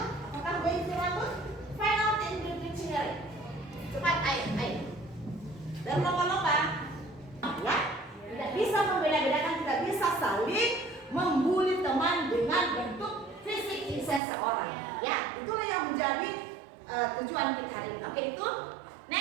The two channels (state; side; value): drops out; left; at 14.2 s